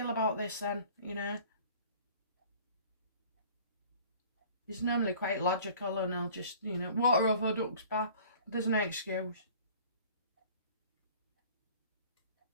about this then, you know? He's normally quite logical and he'll just, you know, water over duck's back. There's no excuse.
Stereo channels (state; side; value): inverted; both; correlation -0.49